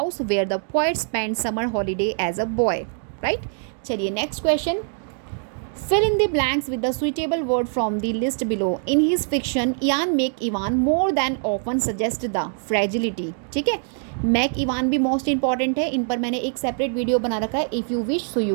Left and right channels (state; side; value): silent; left; 58 dB below the other